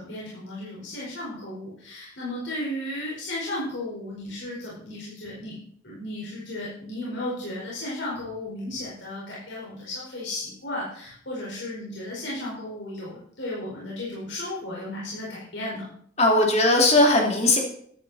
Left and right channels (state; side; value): normal; both; correlation 0.05